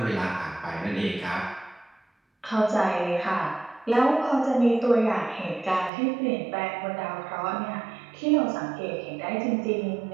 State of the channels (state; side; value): drops out; left; at 5.9 s